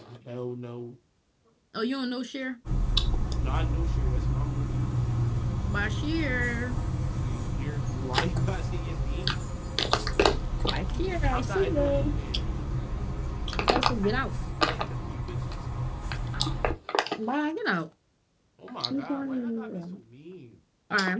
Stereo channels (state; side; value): identical; both; correlation 1.00